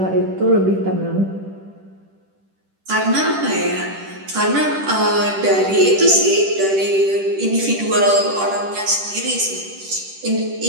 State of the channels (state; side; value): late; left; 10 ms